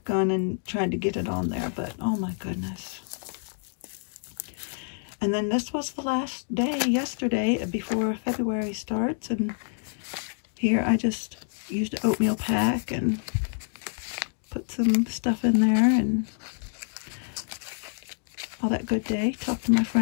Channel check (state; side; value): silent; right; digital silence